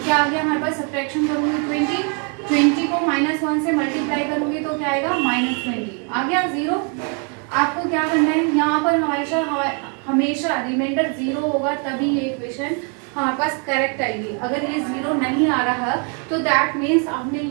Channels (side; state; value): left; quieter; 38.5 dB